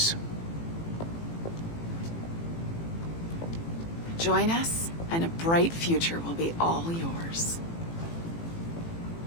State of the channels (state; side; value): late; right; 18 ms